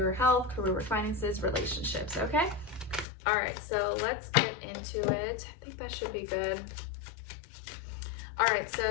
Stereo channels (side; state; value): right; drops out; at 3.1 s